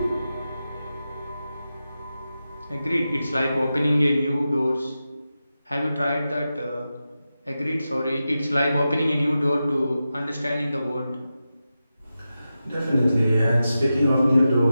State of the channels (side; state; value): both; inverted; correlation -0.92